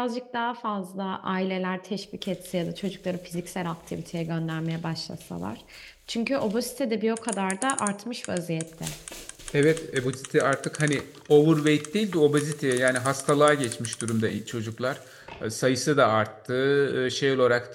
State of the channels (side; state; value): both; identical; correlation 1.00